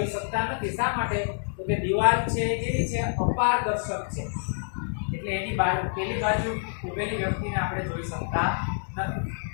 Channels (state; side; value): silent; right; 60 dB below the other